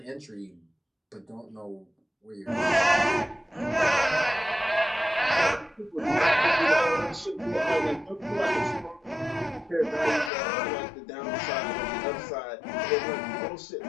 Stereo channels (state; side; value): drops out; right; at 10.3 s